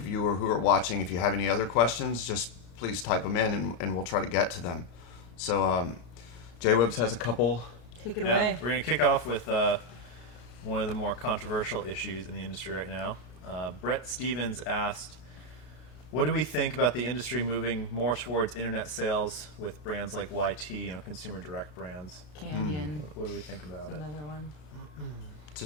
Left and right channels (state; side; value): late; right; 33 ms